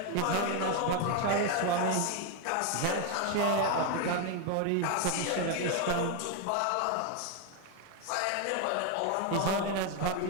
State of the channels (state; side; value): different; both; correlation 0.01